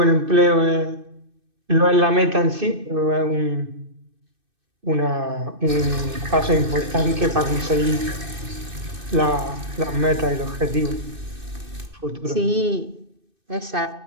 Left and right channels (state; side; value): late; left; 2.6 ms